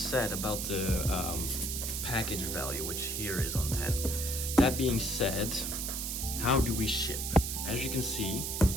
about the package value, which here is on 10. That being said, how do we ship? As you can see,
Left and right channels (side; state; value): right; noise; hiss, 3 dB below the sound